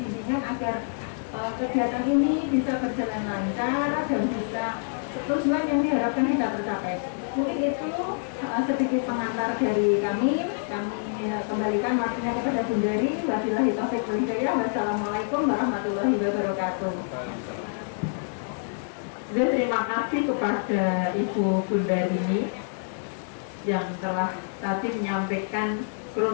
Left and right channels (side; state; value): right; silent; digital silence